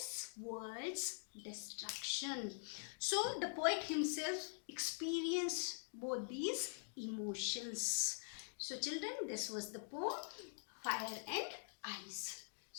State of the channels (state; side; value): silent; right; digital silence